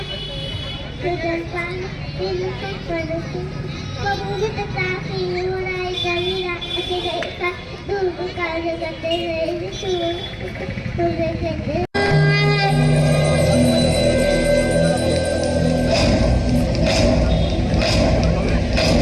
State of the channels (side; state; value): both; identical; correlation 1.00